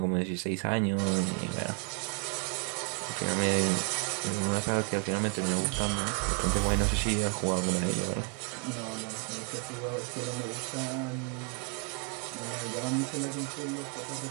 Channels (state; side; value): quieter; left; 38.8 dB